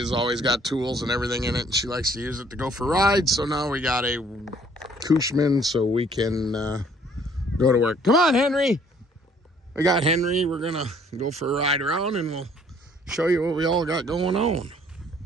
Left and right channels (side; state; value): both; normal; correlation 0.60